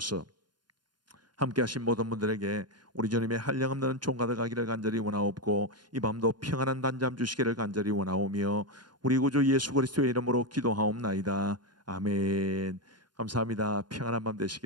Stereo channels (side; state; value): left; late; 0.71 ms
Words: 함께 하신 모든 분들에게 우리 주님의 한량없는 종가들 가기를 간절히 원하옵고 이 밤도 평안한 단잠 주시기를 간절히 원하오며 우리 구주 예수 그리스도의 이름으로 기도하옵나이다. 아멘. 감사합니다. 평안한 밤